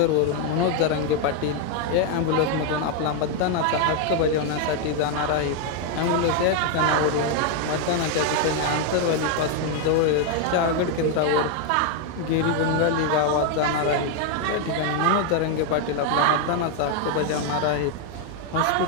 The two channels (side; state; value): both; different; correlation 0.01